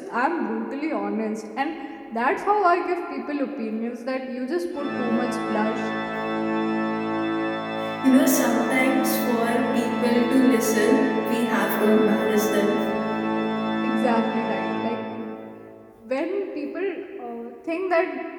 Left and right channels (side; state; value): both; identical; correlation 1.00